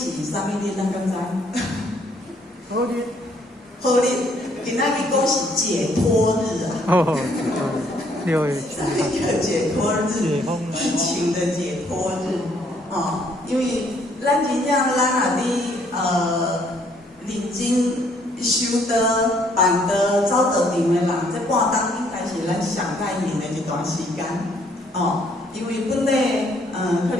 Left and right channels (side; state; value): both; normal; correlation 0.66